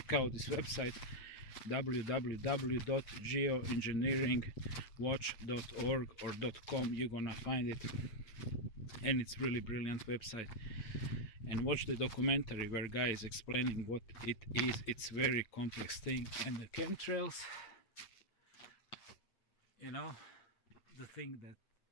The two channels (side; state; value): right; late; 8.6 ms